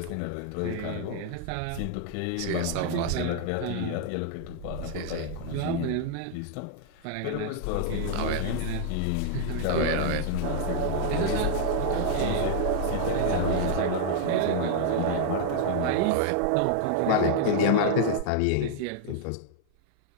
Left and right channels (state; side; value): different; both; correlation -0.01